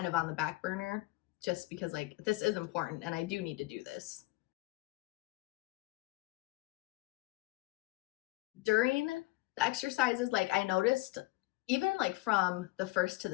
of on the back burner, just because like this is important and I do need to do this. During the exercises, like I noticed even like from the first to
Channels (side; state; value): right; quieter; 20.9 dB